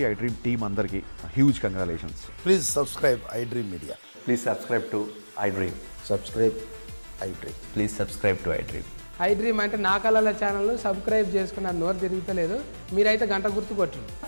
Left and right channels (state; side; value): inverted; both; correlation -1.00